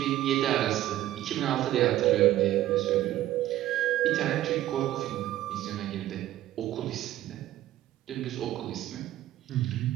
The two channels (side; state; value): left; quieter; 13.9 dB